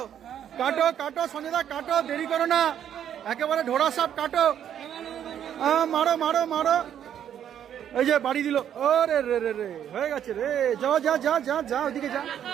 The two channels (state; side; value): quieter; left; 9.7 dB